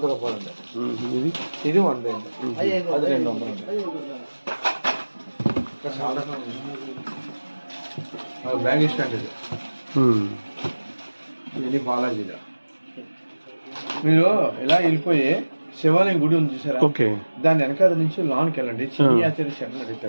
రూపాయలు అండి. ఇది 100 అండి. అది 200 అండి. బ్యాగ్ స్టాండ్ ఇది. ఇది బాలాజీలో మీరు ఇలా వెళ్ళిపోయి శివాలయం గుడి ఉంది చూసారా? ఓకే. దాని వెనకాల నుంచి లాన్కి వెళ్ళండి. చిన్ని ఆచార్య శరణ్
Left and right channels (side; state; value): both; inverted; correlation -1.00